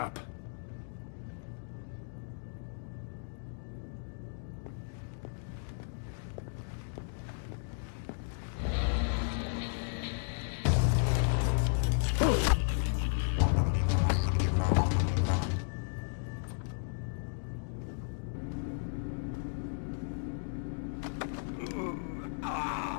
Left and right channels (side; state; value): right; silent; digital silence